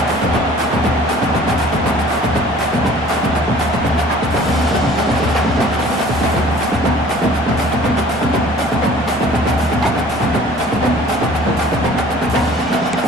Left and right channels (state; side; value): normal; both; correlation 0.50